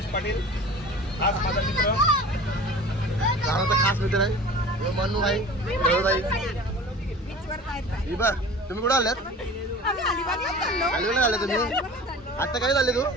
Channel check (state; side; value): normal; both; correlation 0.39